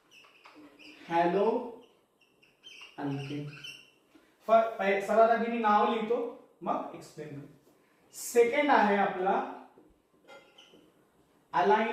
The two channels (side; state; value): both; identical; correlation 1.00